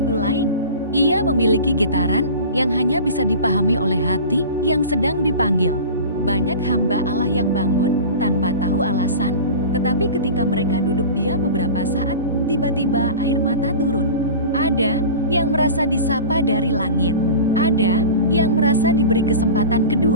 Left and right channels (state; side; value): inverted; both; correlation -0.34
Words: lain. Ia memiliki getaran yang hanya bisa dipahami oleh hati yang sedang dipanggil. Banyak hamba Allah yang bangun tanpa tahu alasan, tetapi ketika mereka duduk diam beberapa saat, tiba-tiba air mata turun. Ada yang merasa disapa dari langit. Ada yang merasa diberi kesempatan